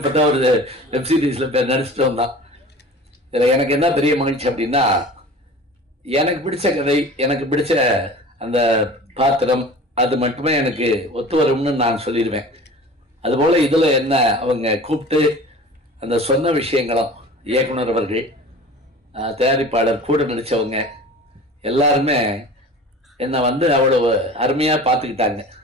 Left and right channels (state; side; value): normal; both; correlation 0.40